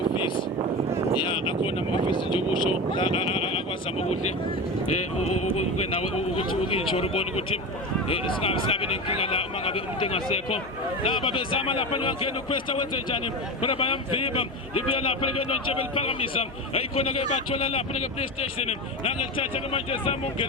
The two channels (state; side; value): normal; both; correlation 0.23